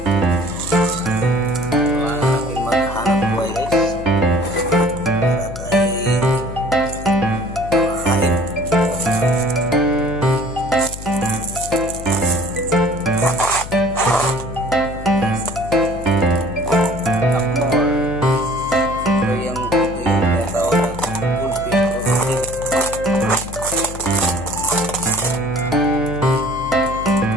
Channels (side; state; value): left; noise; hum, 12 dB below the sound